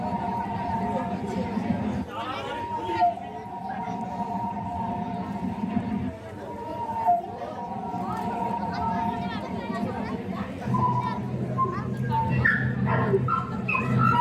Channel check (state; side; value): identical; both; correlation 1.00